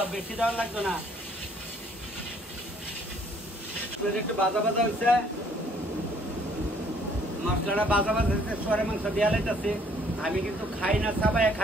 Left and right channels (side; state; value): both; normal; correlation 0.62